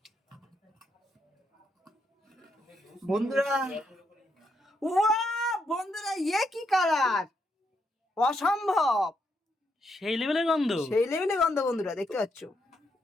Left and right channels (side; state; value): both; normal; correlation 0.79